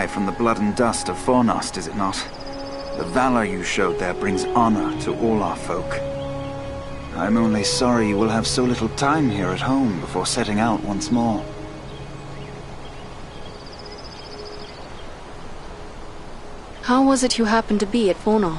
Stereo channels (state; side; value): identical; both; correlation 1.00